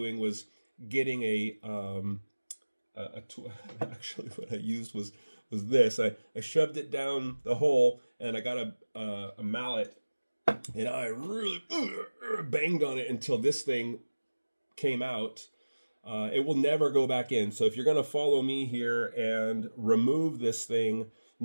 was getting actually what I used was this. I shoved it down the hole, and I got a mallet, and I really banged on it until this thing came out. It will never go back in. So if you're going to follow me here and remove this thing,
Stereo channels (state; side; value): inverted; both; correlation -1.00